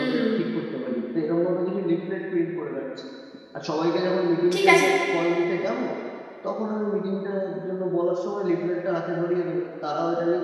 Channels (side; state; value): both; identical; correlation 1.00